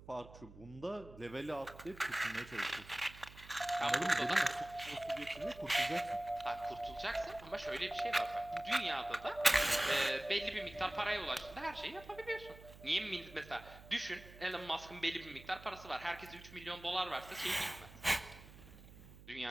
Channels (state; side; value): noise; right; hum, 18 dB below the sound